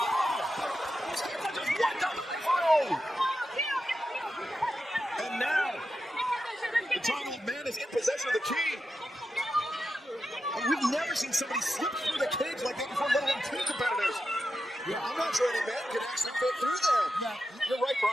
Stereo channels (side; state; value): both; normal; correlation 0.89